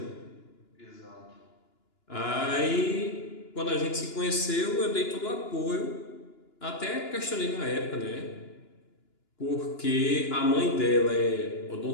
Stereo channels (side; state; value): right; late; 2.9 ms